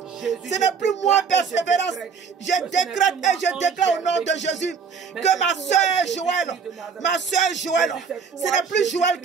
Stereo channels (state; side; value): quieter; left; 6.0 dB